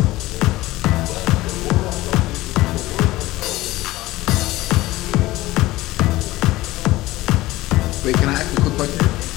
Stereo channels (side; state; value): right; quieter; 18.1 dB